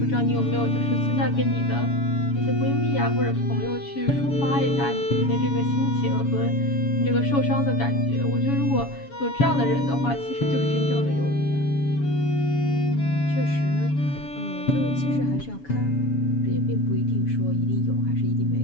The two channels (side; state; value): right; late; 7.1 ms